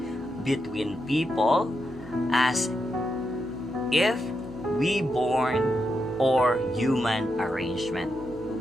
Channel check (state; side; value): normal; both; correlation 0.84